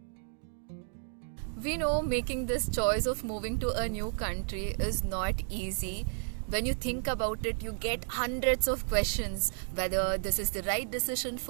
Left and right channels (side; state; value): left; silent; digital silence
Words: We know making this choice of moving to a new country is not easy. When you think about it, you get hundreds of questions whether this is the right decision